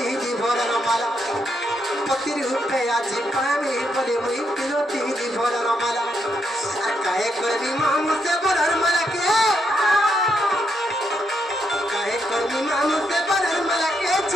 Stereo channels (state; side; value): normal; both; correlation 0.79